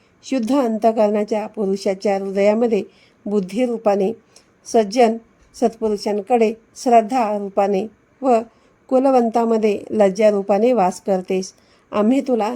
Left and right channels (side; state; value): both; identical; correlation 1.00